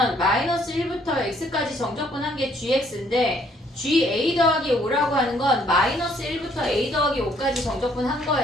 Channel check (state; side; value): normal; both; correlation 0.65